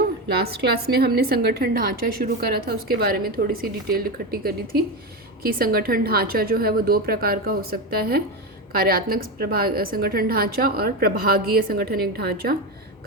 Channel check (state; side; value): normal; both; correlation 0.16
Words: Last class में हमने संगठन ढांचा शुरू करा था, उसके बारे में थोड़ी सी डिटेल इकट्ठी करी थी कि संगठन ढांचा जो है वो दो प्रकार का हो सकता है, कार्यात्मक संगठन ढांचा और प्रभागीय संगठनिक ढांचा।